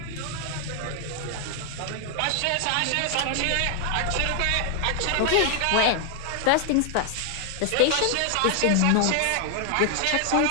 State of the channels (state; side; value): different; both; correlation 0.00